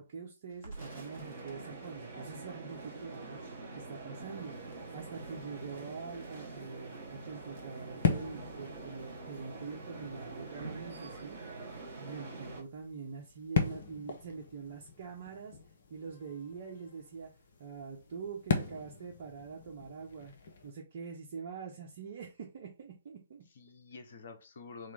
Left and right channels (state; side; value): inverted; both; correlation -0.51